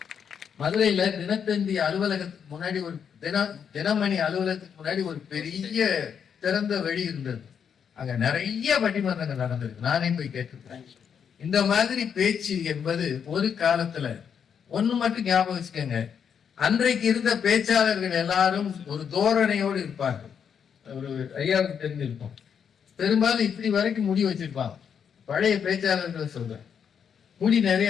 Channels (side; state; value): right; quieter; 7.5 dB